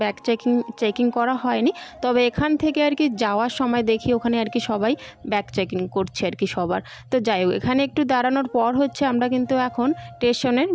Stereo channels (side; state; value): both; identical; correlation 1.00